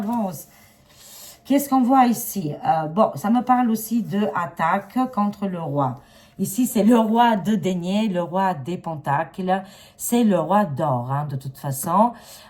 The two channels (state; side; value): identical; both; correlation 1.00